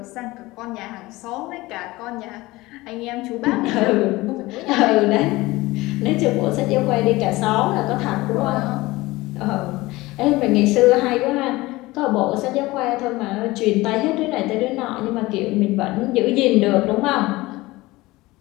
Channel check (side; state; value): right; quieter; 20.0 dB